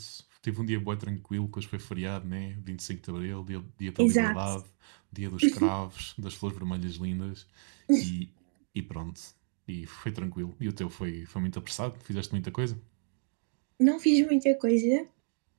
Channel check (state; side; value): silent; left; digital silence